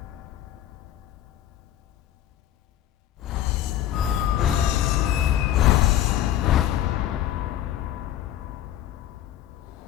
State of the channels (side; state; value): right; quieter; 12.1 dB